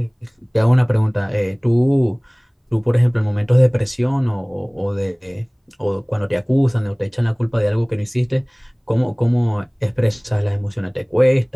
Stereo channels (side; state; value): both; identical; correlation 1.00